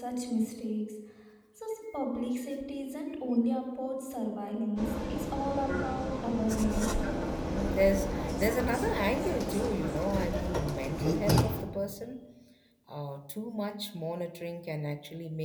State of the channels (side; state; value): both; identical; correlation 1.00